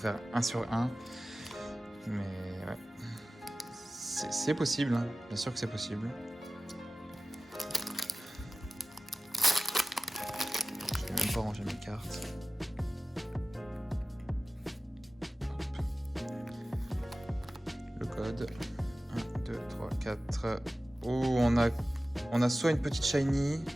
1 sur 1. Mais ouais. C'est possible, hein. Bien sûr que c'est possible. Je vais même pas ranger mes cartes. Le code. 1, 2, 3, 4. Oh, on a soit une petite shiny.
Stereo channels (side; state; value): both; normal; correlation 0.96